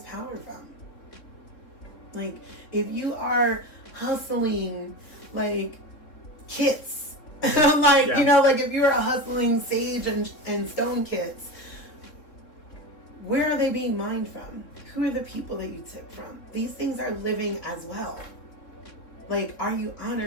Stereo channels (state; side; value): late; right; 3.8 ms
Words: power from? Like, if you are hustling, like, kits, like, you know, like if you're a hustling sage and stone kits, where are they being mined from? Who are the people that you took from? These things are living as well. Like, are you